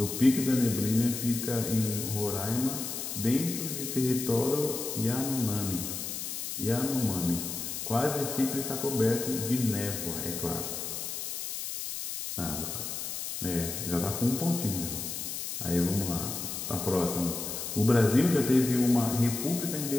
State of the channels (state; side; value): noise; left; hiss, 5 dB below the sound